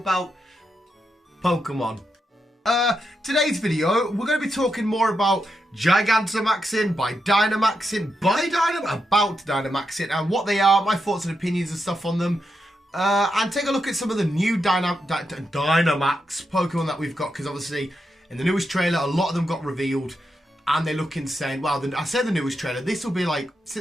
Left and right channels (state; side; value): normal; both; correlation 0.85